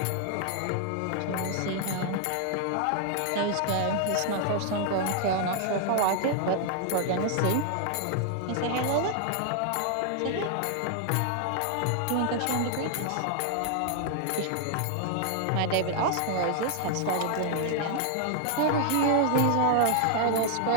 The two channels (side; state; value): both; different; correlation 0.00